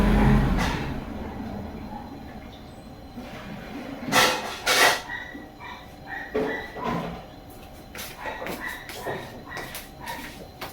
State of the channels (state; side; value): identical; both; correlation 1.00